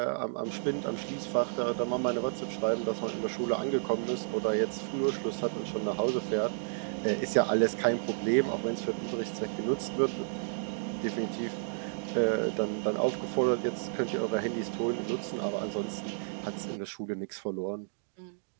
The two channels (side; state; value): left; silent; digital silence